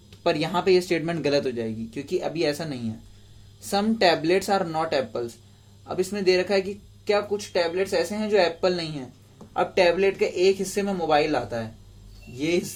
पर यहाँ पे ये स्टेटमेंट गलत हो जाएगी क्योंकि अभी ऐसा नहीं है। Some tablets are not apples. अब इसमें दे रखा है कि क्या कुछ टैबलेट्स ऐसे हैं जो एप्पल नहीं है। अब टैबलेट के एक हिस्से में मोबाइल आता है, ये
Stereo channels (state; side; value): identical; both; correlation 1.00